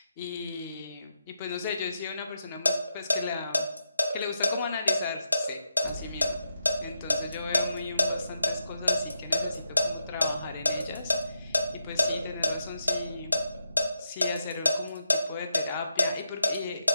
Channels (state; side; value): inverted; both; correlation -0.84